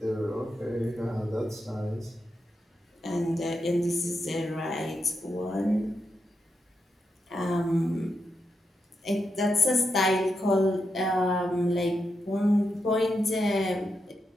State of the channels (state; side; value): normal; both; correlation 0.85